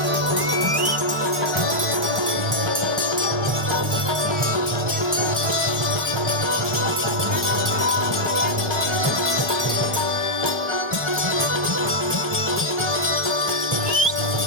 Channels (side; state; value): both; normal; correlation -0.05